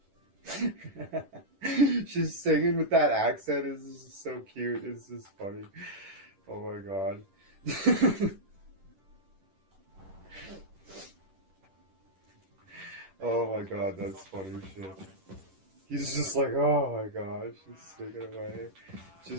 She's singing with that accent. It's just so cute. It's just funny. Oh my god. Oh my god, that's funny shit. He's just like, oh my god, she's singing away.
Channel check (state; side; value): late; left; 10 ms